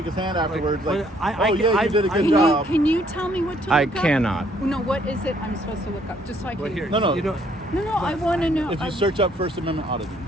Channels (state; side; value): normal; both; correlation 0.65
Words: his hand afterwards, like, I- oh yeah, you did a good Can job. can you tell me what to I look up? cannot. No, what is it I'm supposed to look up? Just so I can. Well, here, No. You know, No, I want to know. If you search up First Amendment auditing,